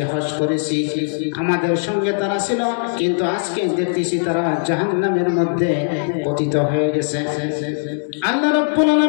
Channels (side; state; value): right; silent; digital silence